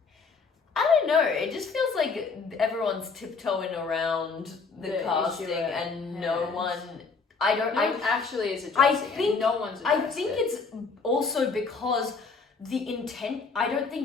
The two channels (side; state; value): right; quieter; 4.7 dB